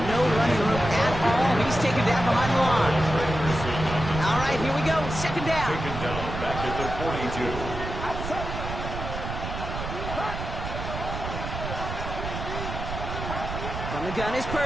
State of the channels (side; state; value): right; noise; rumble, 6 dB below the sound